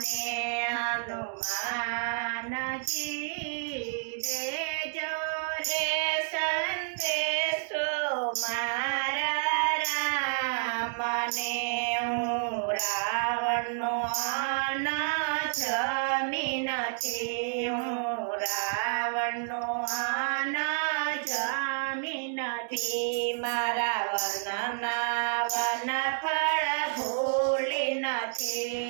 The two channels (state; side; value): silent; left; digital silence